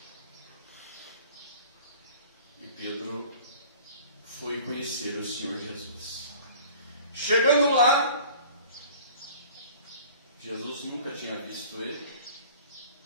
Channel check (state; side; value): inverted; both; correlation -0.46